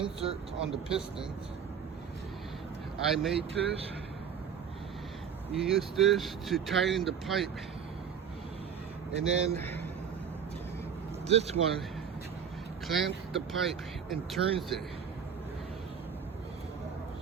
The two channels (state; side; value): quieter; left; 7.5 dB